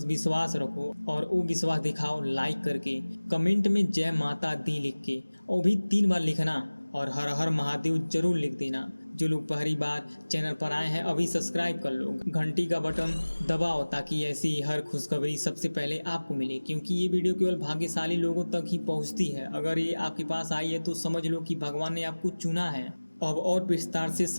विश्वास रखो और वो विश्वास दिखाओ लाइक करके, कमेंट में जय माता दी लिख के, और भी 3 बार लिखना, और हर हर महादेव जरूर लिख देना। जो लोग पहली बार चैनल पर आए हैं अभी सब्सक्राइब कर लो, घंटी का बटन दबाओ ताकि ऐसी हर खुशखबरी सबसे पहले आपको मिले, क्योंकि ये वीडियो केवल भाग्यशाली लोगों तक ही पहुंचती है। अगर ये आपके पास आई है तो समझ लो कि भगवान ने आपको चुना है। अब और विस्तार से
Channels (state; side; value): inverted; both; correlation -1.00